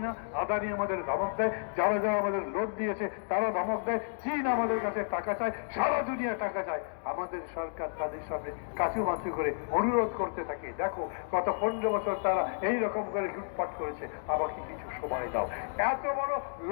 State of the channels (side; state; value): right; silent; digital silence